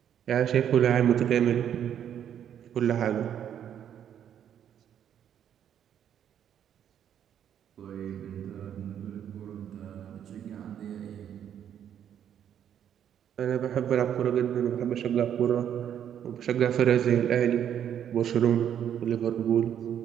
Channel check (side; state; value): left; quieter; 9.5 dB